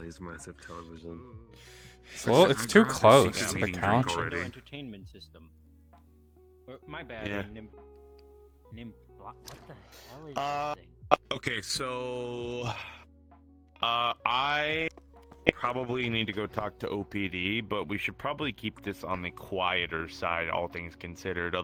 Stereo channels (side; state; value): both; identical; correlation 1.00